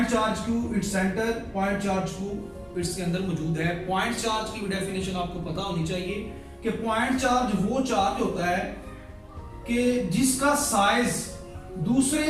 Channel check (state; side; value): identical; both; correlation 1.00